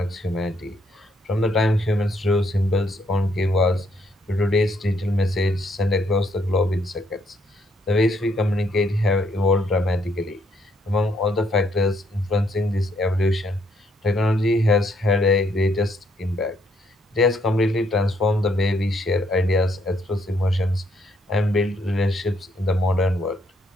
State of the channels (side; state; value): both; normal; correlation 0.71